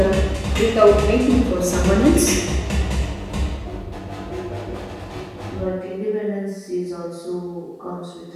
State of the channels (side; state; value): both; identical; correlation 1.00